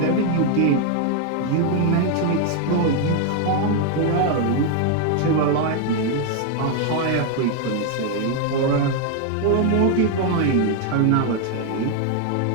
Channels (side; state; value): both; different; correlation 0.00